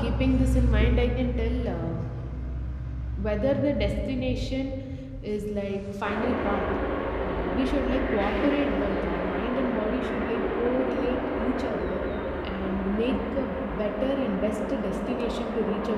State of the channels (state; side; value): identical; both; correlation 1.00